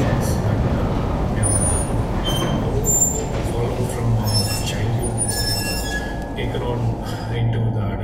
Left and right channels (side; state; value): both; identical; correlation 1.00